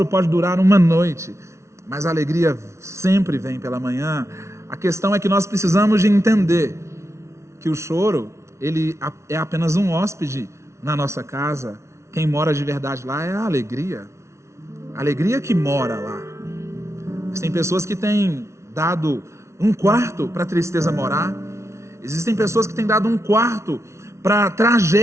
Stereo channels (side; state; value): left; late; 0.13 ms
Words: pode durar uma noite, mas a alegria sempre vem pela manhã. A questão é que nós precisamos de entender que o choro, ele é apenas um hóspede na nossa casa. Quem mora de verdade lá é a alegria que mora lá. Mas tem pessoas que têm dado um quarto para a tristeza morar. Existem pessoas que têm dado um quarto para a